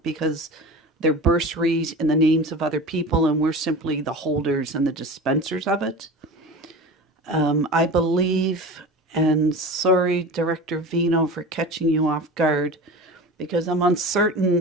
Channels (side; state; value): both; normal; correlation 0.33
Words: because they're bursaries in the names of other people and we're simply the holders and the dispensers of it. I believe, and sorry, Director Vino, for catching you off guard, because I'm